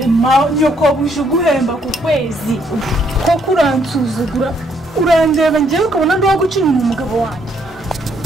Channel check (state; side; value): normal; both; correlation 0.70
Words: nyokobuje uguhemba ku kwezi koko uransuzugura urandeba njyewe ukabona ndi waguca inyuma umugabo wanjye